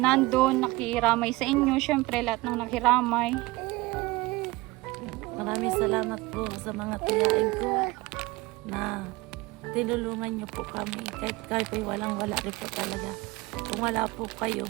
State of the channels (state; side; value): quieter; left; 21.1 dB